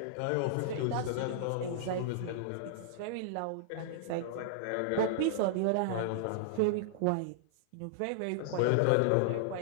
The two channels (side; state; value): both; different; correlation -0.01